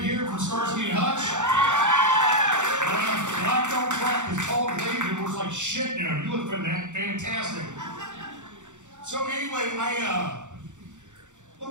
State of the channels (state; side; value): late; left; 0.85 ms